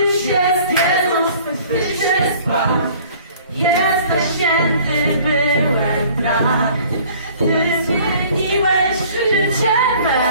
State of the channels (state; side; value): inverted; both; correlation -0.52